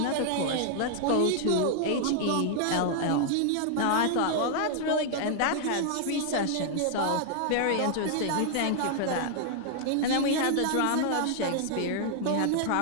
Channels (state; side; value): different; both; correlation 0.00